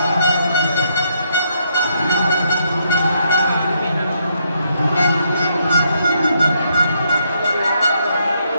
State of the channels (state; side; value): inverted; both; correlation -0.75